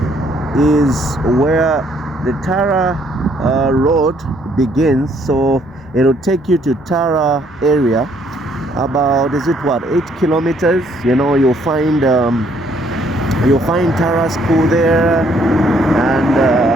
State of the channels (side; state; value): both; normal; correlation 0.66